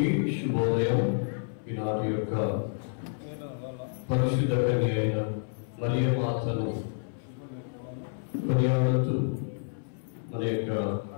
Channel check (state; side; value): silent; right; 58 dB below the other